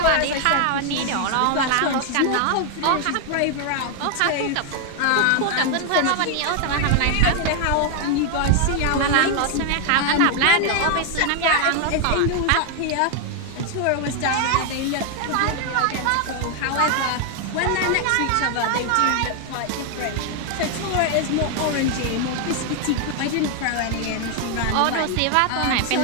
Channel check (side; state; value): both; different; correlation 0.00